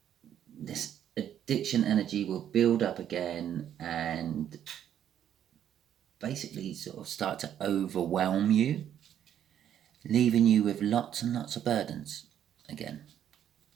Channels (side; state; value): left; quieter; 10.0 dB